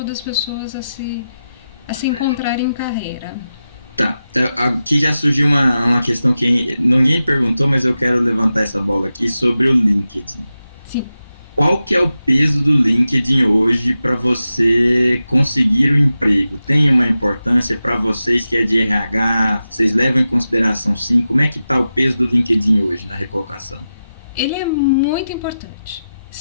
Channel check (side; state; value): both; inverted; correlation -0.92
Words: as pessoas a se encontrarem em carreira. Tá, aqui já surgiu uma questão que ninguém perguntou, mas eu quero levantar essa bola aqui sobre o LinkedIn. Sim. Qual que é o peso do LinkedIn hoje para você conseguir o emprego? Tem uma importância para vocês que é de RH? Vocês levam em consideração sim? Como é que está o peso do LinkedIn hoje na recolocação? Ele é muito importante,